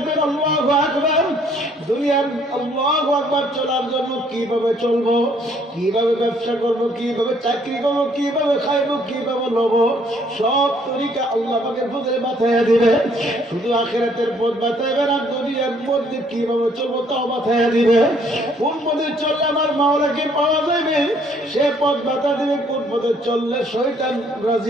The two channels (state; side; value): normal; both; correlation 0.64